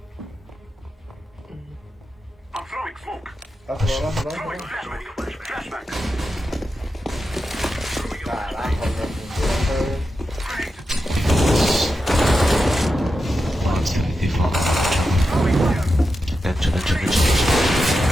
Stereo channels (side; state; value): both; normal; correlation 0.89